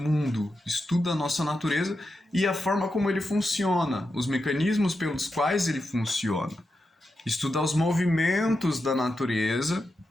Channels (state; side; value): normal; both; correlation 0.88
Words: estuda a nossa natureza e a forma como ele funciona, os mecanismos pelos quais ele funciona. Estuda os movimentos da natureza,